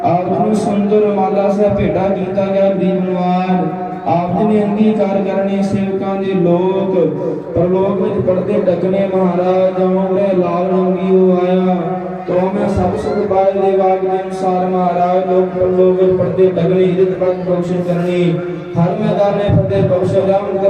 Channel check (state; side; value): identical; both; correlation 1.00